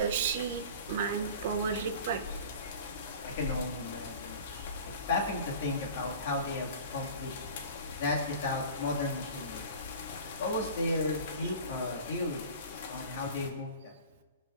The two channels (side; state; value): both; inverted; correlation -0.39